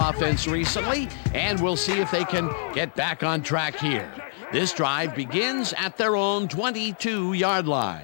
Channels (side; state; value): right; silent; digital silence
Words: recently, and we'll see if they can get back on track here. This drive begins at their own 22-yard